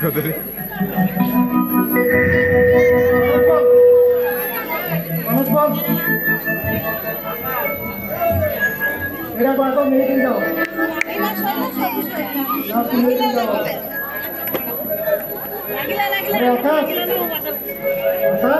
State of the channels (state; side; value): identical; both; correlation 1.00